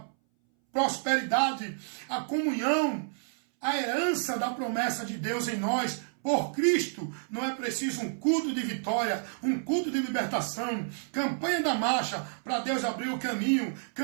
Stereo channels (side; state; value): left; silent; 58 dB below the other